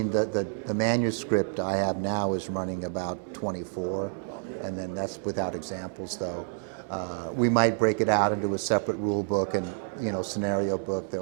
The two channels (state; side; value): silent; left; 59 dB below the other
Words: the manuscript I have now is running about 24, Okay. and then that's without examples, though. We might break it out into a separate rule book and, you know, scenario book.